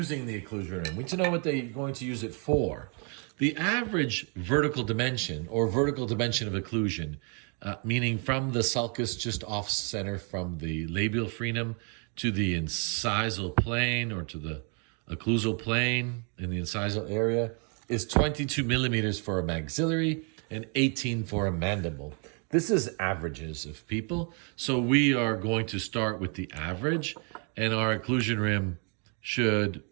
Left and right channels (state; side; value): quieter; left; 38.1 dB